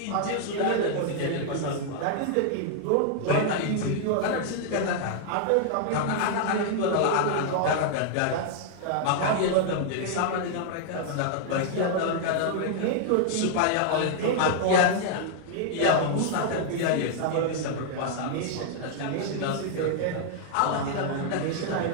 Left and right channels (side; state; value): both; different; correlation 0.00